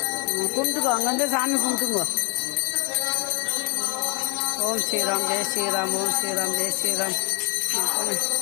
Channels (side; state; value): right; quieter; 31.7 dB